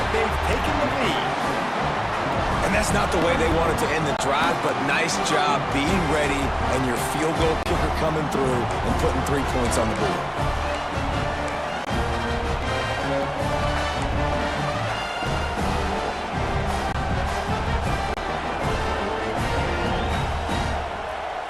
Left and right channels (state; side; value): identical; both; correlation 1.00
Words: they've taken the lead. And that's not the way they wanted to end the drive, but nice job being ready and your field goal kicker coming through and putting 3 points on the board.